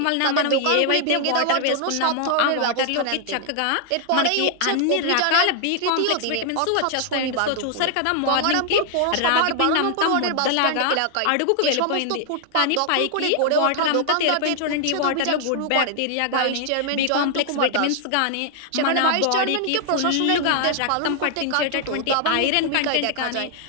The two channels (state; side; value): different; both; correlation 0.00